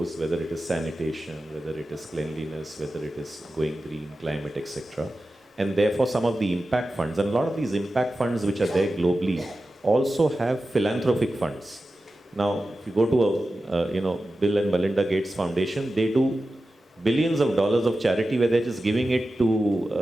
whether it is sanitation, whether it is cleanliness, whether it is going green, climate, etc. And therefore some of the impact funds, and a lot of these impact funds which are there globally also have philanthropic funds. Now, if you go to a Bill and Melinda Gates Foundation, they do billions of dollars of charity where they're just giving it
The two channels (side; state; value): both; normal; correlation 0.93